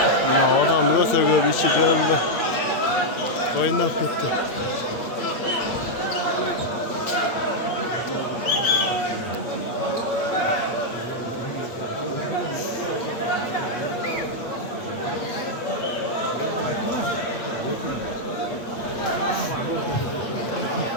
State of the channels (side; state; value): right; late; 8.6 ms